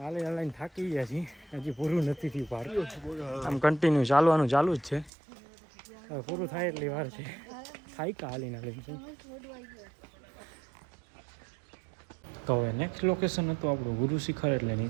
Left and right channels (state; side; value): drops out; left; at 5.1 s